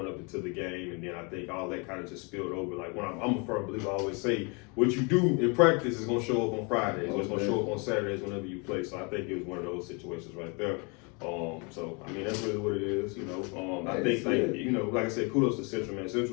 up into the game, and then I think all that kind of just spilled over. Like when I'm a firm believer, I always say, what you do in practice is gonna show up on Fridays, or it's gonna show up on Saturdays whenever you play. So I think it was one of those situations right there. So I mean that's really what it is, you know. I think like you know, like I said, kudos to Central, man.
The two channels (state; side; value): quieter; right; 32.4 dB